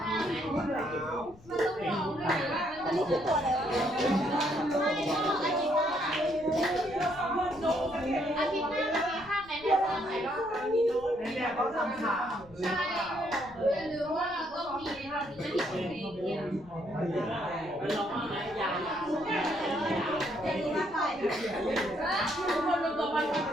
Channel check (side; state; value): left; noise; rumble, 22 dB below the sound